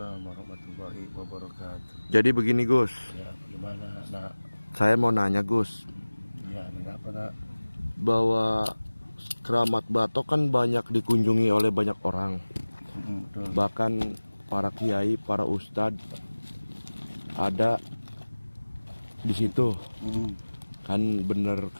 warahmatullahi wabarakatuh. Jadi begini Gus, Ya, gimana nak? saya mau nanya Gus, Ya, ini apa nak? bahwa Keramat Batok kan banyak dikunjungi oleh banyak orang, Betul. bahkan para kiai, para ustadz ada di situ. Kan bener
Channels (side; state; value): both; inverted; correlation -1.00